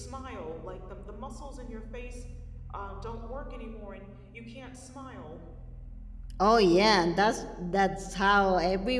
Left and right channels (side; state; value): both; identical; correlation 1.00